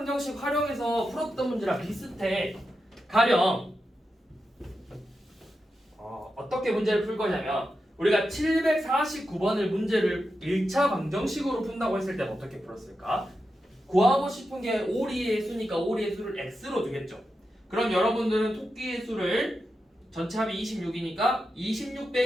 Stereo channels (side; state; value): both; normal; correlation 0.89